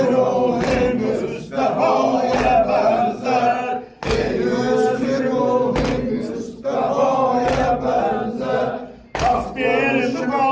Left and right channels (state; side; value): identical; both; correlation 1.00